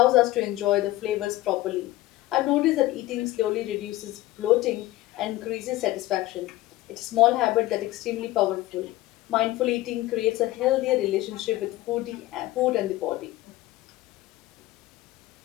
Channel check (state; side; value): quieter; right; 17.0 dB